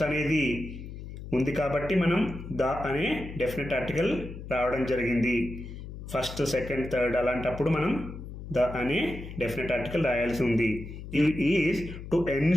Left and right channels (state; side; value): noise; left; hum, 11 dB below the sound